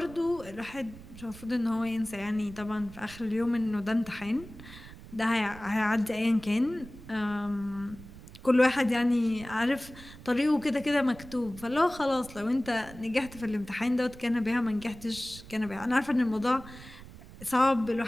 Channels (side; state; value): right; noise; rumble, 17 dB below the sound